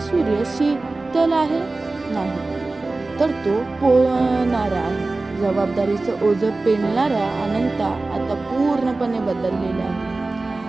शीतल आहे नाही, तर तो पोळणारा आहे. जबाबदारीचं ओझं पेलणारा अनंता आता पूर्णपणे बदललेला आहे.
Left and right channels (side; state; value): left; quieter; 3.3 dB